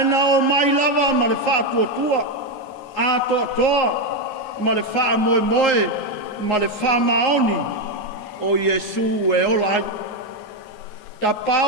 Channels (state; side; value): late; right; 9.5 ms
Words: o mai lava ma le whaatuatua, a toa, ma le wha moe, ma le wha maoni o Yesu e olai. The